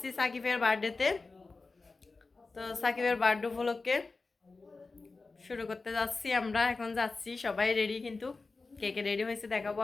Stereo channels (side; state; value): right; quieter; 3.9 dB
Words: সাকিবের বার্থডেতে। তো সাকিবের বার্থডে উপলক্ষে শুরু করতে যাচ্ছি। আমরা এখন যাচ্ছি, সবাই রেডি, কিন্তু কে কে রেডি হয়েছে দেখাবো